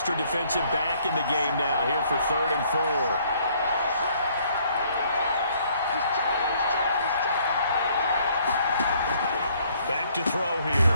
defensive back in the game now here for 3rd and 4. To throw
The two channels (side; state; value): both; inverted; correlation -0.64